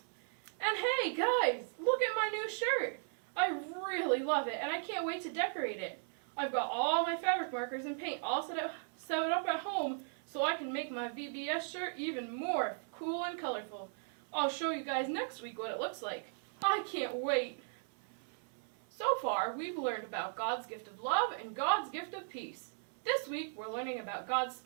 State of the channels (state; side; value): silent; left; 53 dB below the other